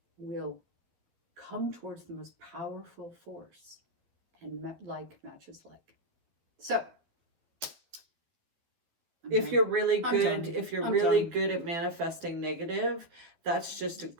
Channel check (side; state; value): left; late; 12 ms